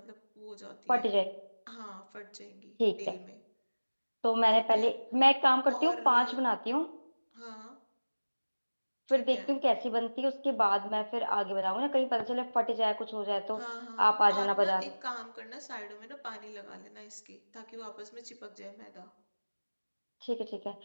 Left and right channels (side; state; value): both; inverted; correlation -1.00